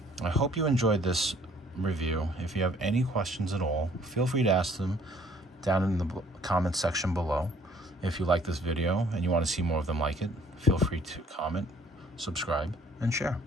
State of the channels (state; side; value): normal; both; correlation 0.59